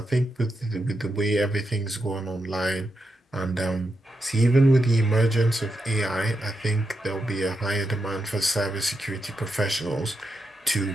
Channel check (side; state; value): both; normal; correlation 0.85